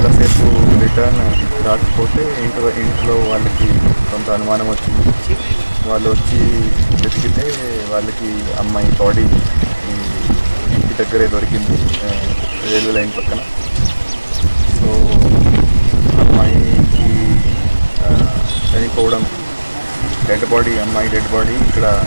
రిటర్న్ రాకపోతే ఇంట్లో వాళ్ళకి కొంత అనుమానం వచ్చింది. వాళ్ళు వచ్చి వెతికితే వాళ్ళకి అమ్మాయి బాడీ ఇంటి దగ్గరే దొరికింది, రైల్వే లైన్ పక్కన. సో అమ్మాయికి చనిపోవడం, అమ్మాయి డెడ్ బాడీ ఇక్కడ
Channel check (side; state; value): both; inverted; correlation -1.00